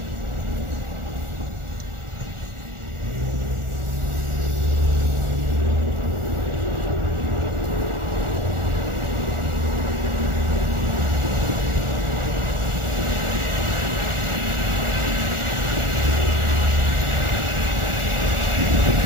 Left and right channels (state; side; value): late; left; 1.4 ms